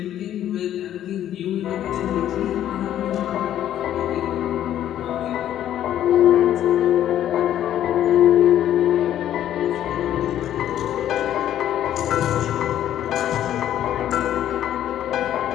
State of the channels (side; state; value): right; quieter; 11.5 dB